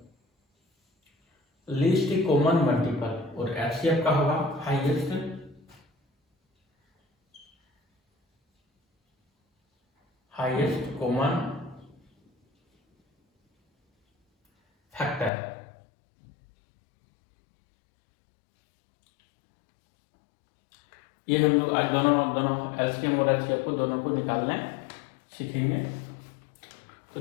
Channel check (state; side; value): drops out; right; at 15.3 s